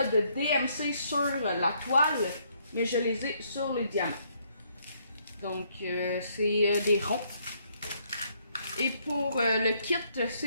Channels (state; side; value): inverted; both; correlation -0.70